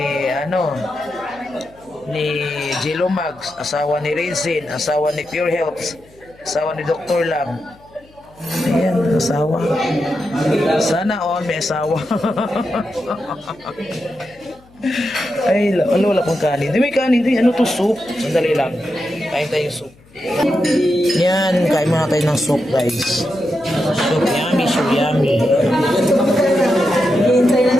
ni Jello Mags, asawa ni Rinzin, asawa ni Pure Health, asawa ni Dr. Lam. Ayan, asawa. Sana all may asawa. Ay, wala pang kanin. Di may kanin. Di, ano to, soup? Sandali lang. Kain tayo soup. Yan, kain muna tayo ng soup, guys. Soup, yummy, so yummy.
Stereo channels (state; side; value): noise; left; hum, 28 dB below the sound